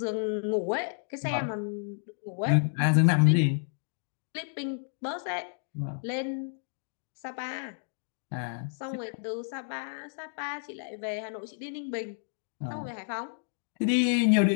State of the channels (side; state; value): right; silent; digital silence